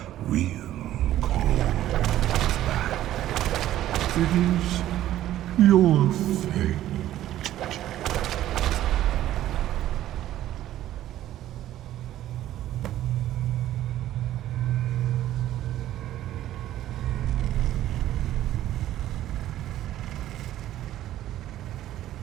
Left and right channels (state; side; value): quieter; left; 13.2 dB